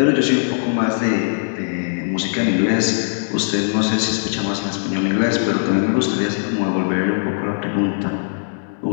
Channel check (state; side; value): silent; right; digital silence